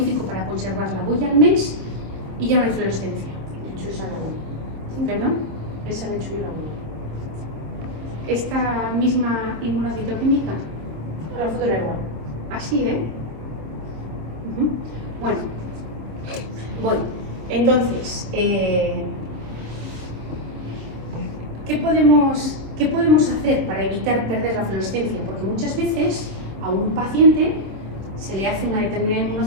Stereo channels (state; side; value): late; left; 26 ms